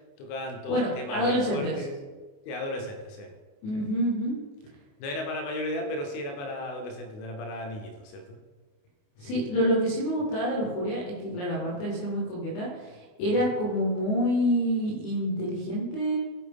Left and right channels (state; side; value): late; right; 28 ms